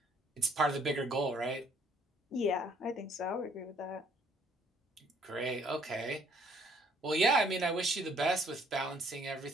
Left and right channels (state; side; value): normal; both; correlation 0.63